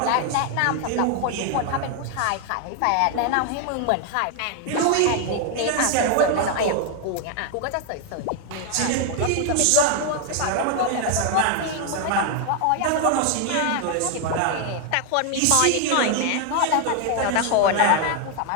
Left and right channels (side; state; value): both; different; correlation 0.00